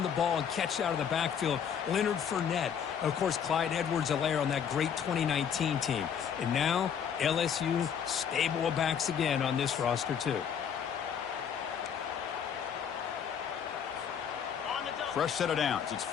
the ball and catch out of the backfield. Leonard Fournette. Of course, Clyde Edwards-Helaire on that great 2019 team. And now, LSU stable of backs again on this roster, too. Fresh set of downs. It's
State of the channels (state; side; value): quieter; right; 7.9 dB